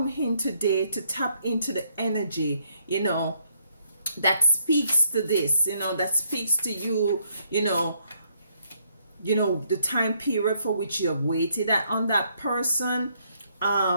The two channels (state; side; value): inverted; both; correlation -0.71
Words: in today to tap into the energy, that speaks to this, that speaks to you, the time period for which you have waited on that person.